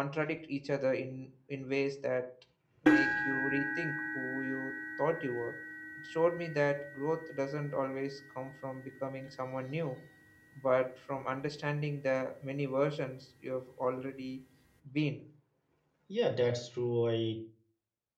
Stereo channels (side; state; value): both; identical; correlation 1.00